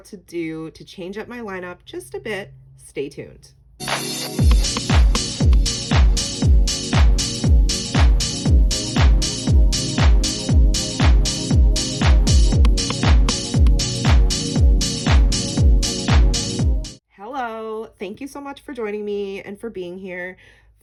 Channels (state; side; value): identical; both; correlation 1.00